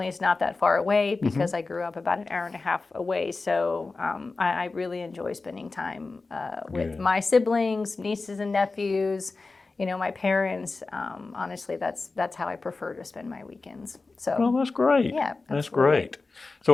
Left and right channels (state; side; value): quieter; right; 3.8 dB